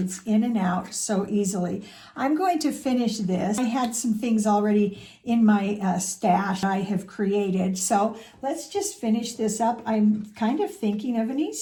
in and out so easily. I'm going to finish this. I had some things already in my stash I have created. So let's just finish this up. I'm kind of thinking of an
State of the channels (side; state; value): both; identical; correlation 1.00